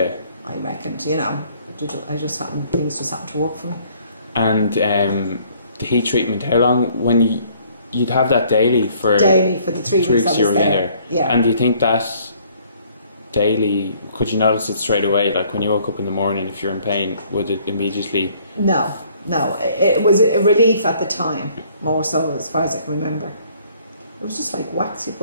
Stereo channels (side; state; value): both; inverted; correlation -0.60